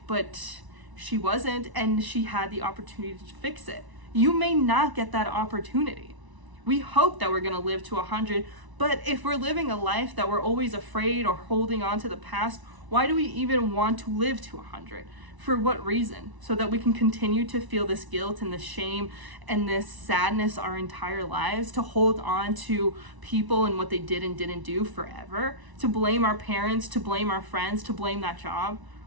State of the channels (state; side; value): late; left; 1.0 ms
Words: but she wasn't, and she had the opportunity to fix it. You may not get that opportunity. We hope that we're gonna live to 100, but if we're living a life that we're always afraid or holding on to the past, why do we even want to live to 100? For what reason? So that we can continue to feel this guilt and this shame and this sadness our entire lives, to hold on to people and what they did and didn't do forever, to blame our parents, to blame our friends, to blame that job?